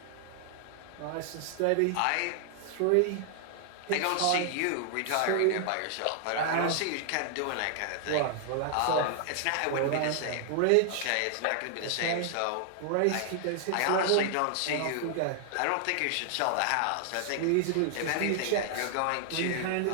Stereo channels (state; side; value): different; both; correlation 0.00